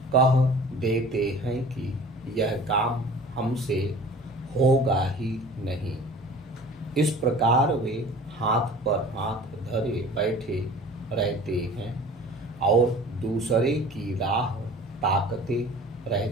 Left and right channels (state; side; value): normal; both; correlation 0.44